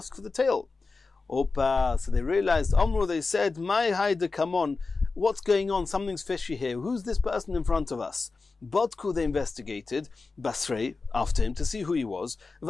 for the tail. Opa, so they realized, Omru, they said, My haida, come on, what's going on? Something's fishy here. Who's this person in front of us? Bodku, they investigated, Basrei, after him, to see who he was.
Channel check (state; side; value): quieter; right; 4.0 dB